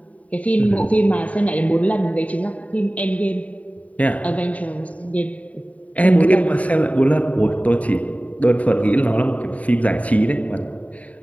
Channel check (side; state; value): right; late; 0.068 ms